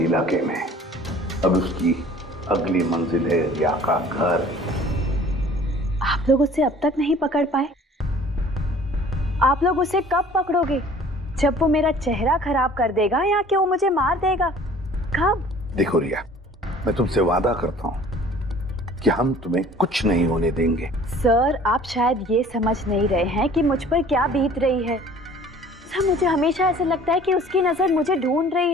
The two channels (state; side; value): normal; both; correlation 0.50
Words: में। अब उसकी अगली मंजिल है रिया का घर। आप लोग उसे अब तक नहीं पकड़ पाए? आप लोग उसे कब पकड़ोगे? जब वो मेरा चेहरा खराब कर देगा या कि वो मुझे मार देगा? कब? देखो रिया, मैं तुमसे वादा करता हूं कि हम तुम्हें कुछ नहीं होने देंगे। सर, आप शायद ये समझ नहीं रहे हैं कि मुझ पर क्या बीत रही है। सर, मुझे हमेशा ऐसे लगता है कि उसकी नजर मुझे ढूंढ रही